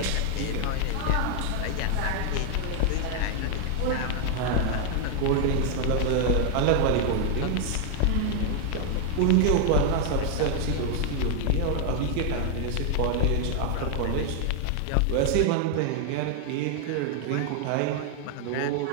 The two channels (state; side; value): different; both; correlation 0.00